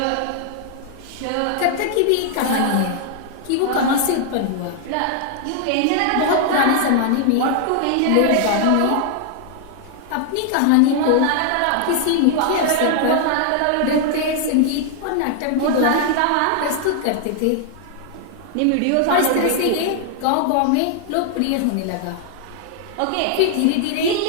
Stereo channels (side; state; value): both; different; correlation 0.00